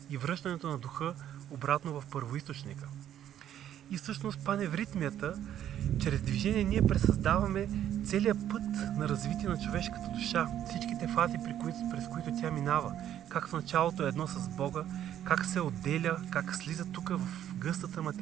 и връщането на духа обратно в първоизточника. И всъщност паневритмията, чрез движение ние пресъздаваме целият път на развитие на човешката душа, всичките фази, през които тя минава, как в началото е едно с Бога, как се отделя, как слиза тук в гъстата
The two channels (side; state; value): left; quieter; 10.9 dB